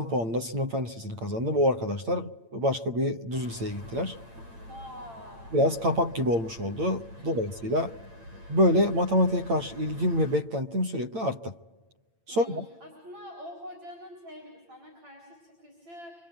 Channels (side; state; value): left; late; 8.8 ms